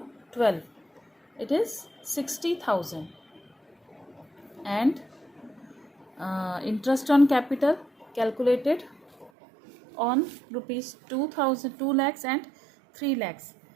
12. It is 60,000. And interest on capital calculated on rupees 2,000, 2 lakhs and 3 lakhs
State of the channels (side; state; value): left; drops out; at 9.3 s